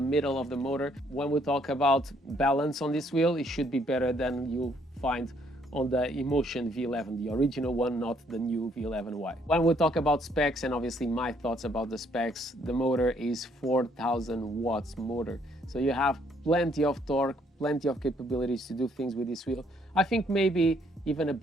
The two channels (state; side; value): normal; both; correlation 0.67